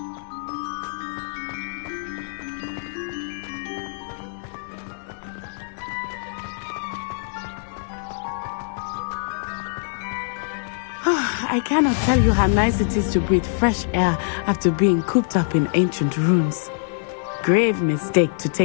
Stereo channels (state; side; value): silent; right; digital silence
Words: I cannot tell you how nice it is to breathe fresh air after being cooped up in ancient rooms. Grave mistake to